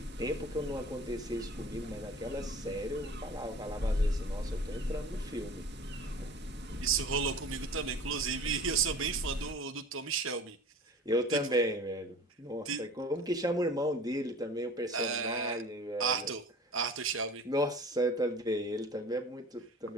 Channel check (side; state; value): both; normal; correlation 0.42